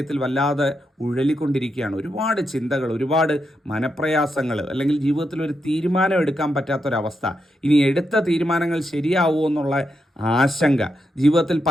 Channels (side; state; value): both; normal; correlation 0.84